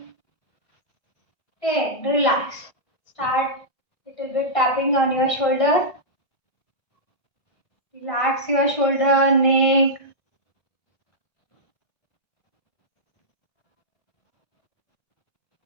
10. Relax. Start little bit tapping on your shoulder. Relax your shoulder, neck.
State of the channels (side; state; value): right; late; 1.5 ms